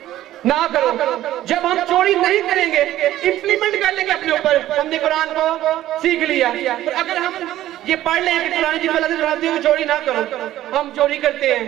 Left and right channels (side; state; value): left; quieter; 13.8 dB